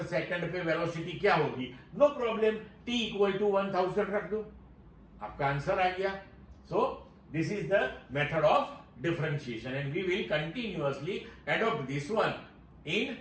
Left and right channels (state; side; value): identical; both; correlation 1.00